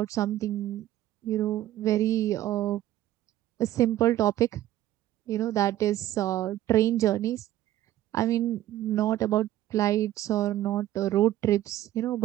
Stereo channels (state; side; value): quieter; left; 13.6 dB